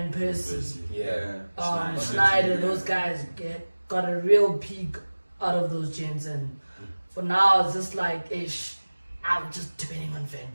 Persie, Yeah. Schneider, those guys got a real peak out of those gents, and for now it's just like I'm just depending on Van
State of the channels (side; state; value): both; inverted; correlation -1.00